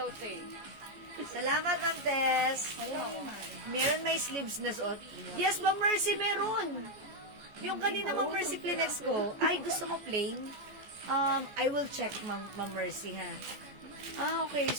te. Salamat, Ma'am Tess. Meron may sleeves na suot. Yes, Ma'am Mercy, meron. Yung kanina, Ma'am Mercy, Kleenex ko. Ay, gusto mo plain? I will check, Ma'am Mercy, ha. Okay.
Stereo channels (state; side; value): late; left; 14 ms